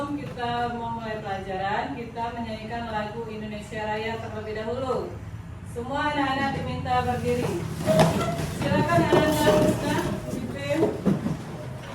kita memulai pelajaran, kita menyanyikan lagu Indonesia Raya terlebih dahulu. Semua anak-anak diminta berdiri. Silakan anak-anak Husna, Pipim.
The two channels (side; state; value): both; identical; correlation 1.00